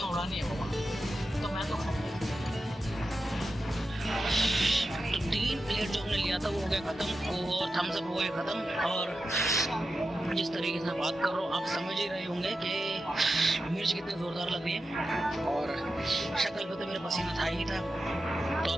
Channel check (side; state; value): both; normal; correlation 0.90